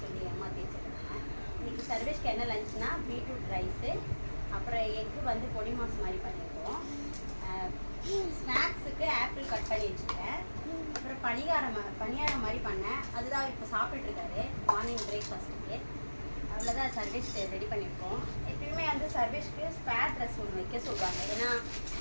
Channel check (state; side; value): inverted; both; correlation -1.00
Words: சொல்லி ஏமாற்றி வச்சுருக்கேன். இன்னைக்கு சர்வேஷ்க்கு என்ன லஞ்சுனா பீட்ரூட் ரைஸு, அப்புறம் எக்கு வந்து பொடி மாஸ் மாதிரி பண்ணியிருக்கோம். ஸ்நாக்ஸுக்கு ஆப்பிள் கட் பண்ணி வச்சுருக்கேன். அப்புறம் பணியாரம் மாதிரி பண்ணேன். அதுதான் இப்போ சாப்பிட்டுருக்காரு மார்னிங் பிரேக்ஃபாஸ்ட்டுக்கு. அவ்வளோதான் சர்வேஷ் ரெடி பண்ணியிருக்கோம். எப்பயுமே வந்து சர்வேஷ்க்கு ஸ்பேர் ட்ரெஸ் ஒன்று வைக்க சொல்லுவாங்க. ஏன்னா